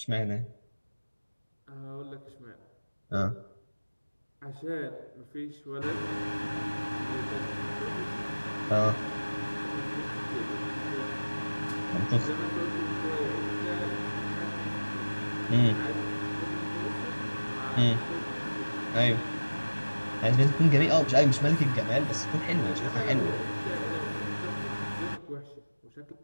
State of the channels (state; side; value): inverted; both; correlation -1.00